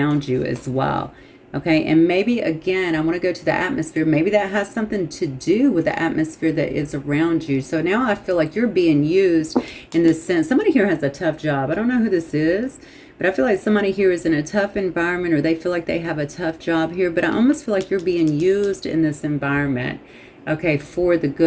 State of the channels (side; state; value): both; identical; correlation 1.00